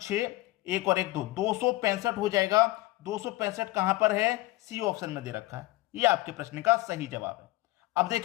1 और 1 2, 265 हो जाएगा। 265 कहां पर है, सी ऑप्शन में दे रखा है। ये आपके प्रश्न का सही जवाब है। अब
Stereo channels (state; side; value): quieter; right; 19.0 dB